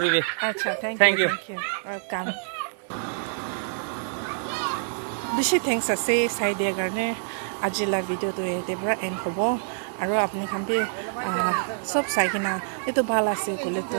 আচ্ছা থ্যাংক ইউ ওয়েলকাম বেছি থ্যাংকস আছে চাই দিয়াৰ কাৰণে আজিলা ভিডিঅ'টো এতে পৰা এণ্ড হ'ব আৰু আপুনি খান বি সব চাই কিনা এইটো ভাল আছে ক'লে তো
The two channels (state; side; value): silent; left; 61 dB below the other